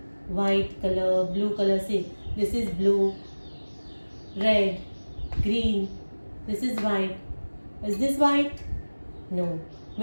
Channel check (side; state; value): both; inverted; correlation -1.00